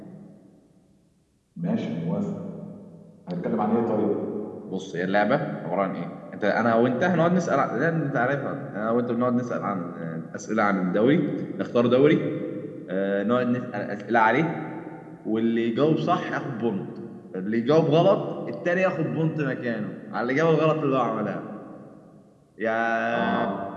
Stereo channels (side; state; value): both; identical; correlation 1.00